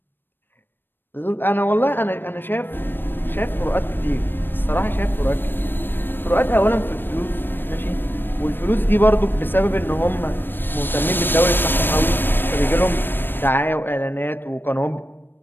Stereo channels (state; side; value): late; right; 0.096 ms